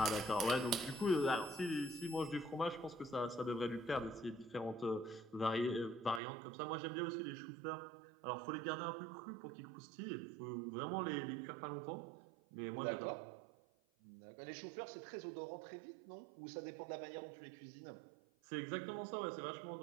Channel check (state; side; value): drops out; left; at 6.2 s